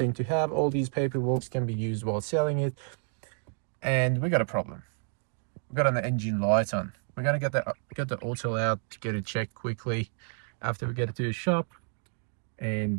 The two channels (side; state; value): left; silent; 58 dB below the other